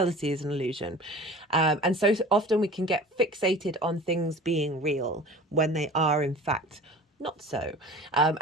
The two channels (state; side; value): normal; both; correlation 0.40